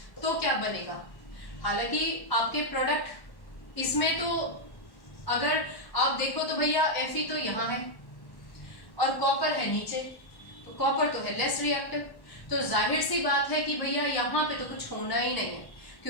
तो क्या बनेगा। हालांकि आपके प्रोडक्ट इसमें तो अगर आप देखो तो भैया Fe तो यहाँ है और कॉपर है नीचे, तो कॉपर तो है लेस रिएक्टिव, तो जाहिर सी बात है कि भैया यहाँ पे तो कुछ होना ही नहीं है,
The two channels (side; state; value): right; late; 1.1 ms